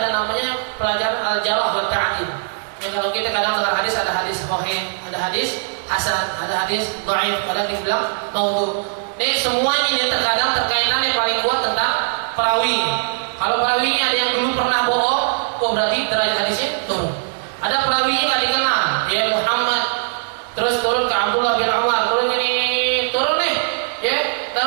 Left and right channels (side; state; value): left; silent; digital silence